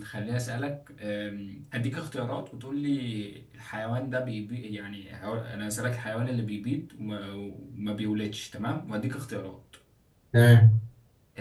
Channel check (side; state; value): both; identical; correlation 1.00